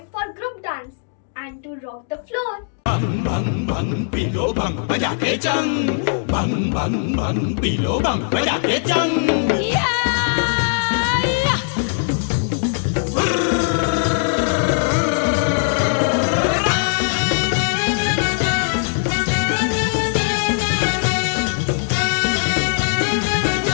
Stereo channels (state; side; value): silent; right; digital silence